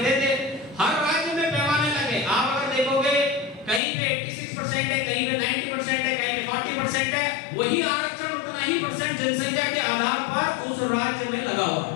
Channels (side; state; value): right; drops out; at 3.8 s